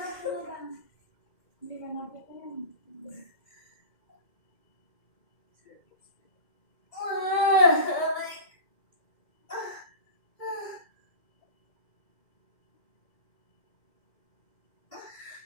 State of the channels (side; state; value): right; late; 2.1 ms